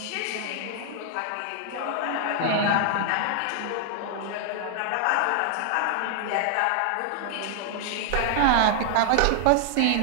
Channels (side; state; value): both; different; correlation 0.00